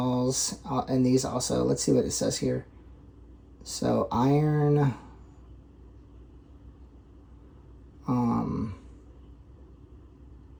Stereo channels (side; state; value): both; identical; correlation 1.00